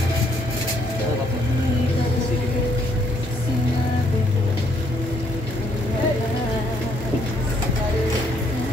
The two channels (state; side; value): normal; both; correlation 0.69